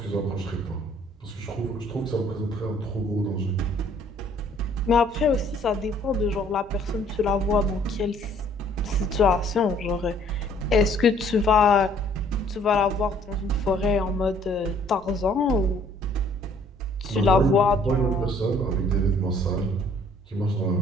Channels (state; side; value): normal; both; correlation 0.59